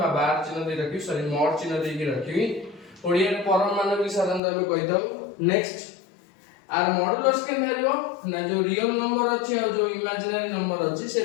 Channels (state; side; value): drops out; right; at 4.4 s